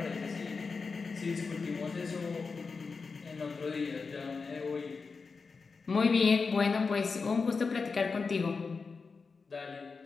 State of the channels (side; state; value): right; quieter; 4.7 dB